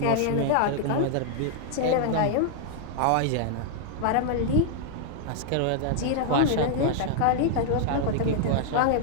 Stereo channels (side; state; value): both; different; correlation -0.01